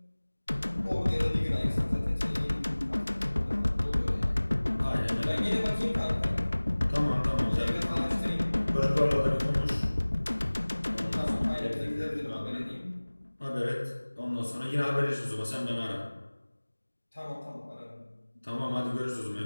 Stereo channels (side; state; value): both; inverted; correlation -1.00